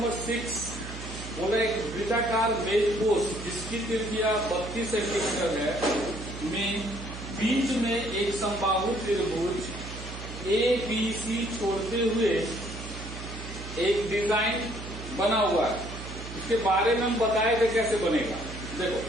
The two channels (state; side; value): noise; right; hum, 10 dB below the sound